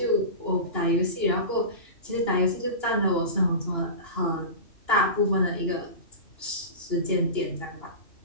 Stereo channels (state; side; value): late; right; 2.9 ms